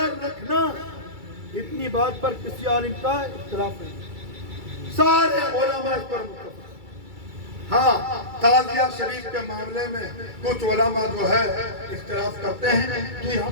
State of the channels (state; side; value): late; left; 2.3 ms